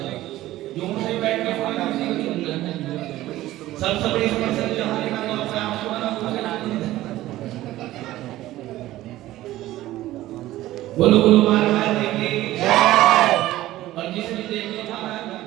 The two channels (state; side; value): quieter; left; 15.6 dB